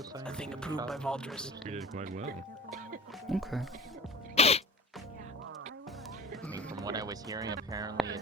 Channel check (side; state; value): both; normal; correlation 0.37